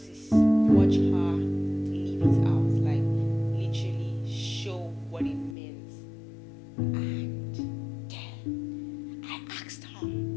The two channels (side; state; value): right; drops out; at 5.6 s